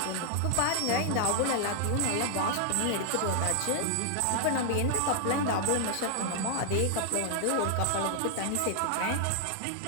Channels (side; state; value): both; different; correlation 0.00